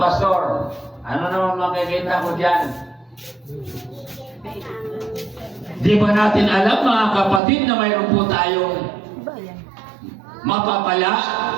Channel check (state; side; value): drops out; left; at 7.4 s